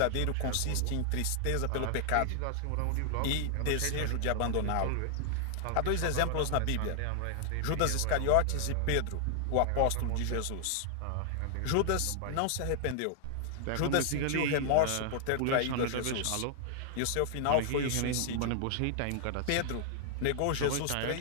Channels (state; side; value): different; both; correlation 0.00